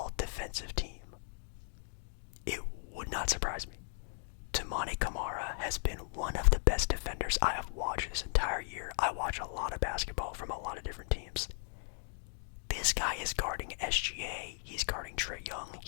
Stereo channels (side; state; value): right; silent; 53 dB below the other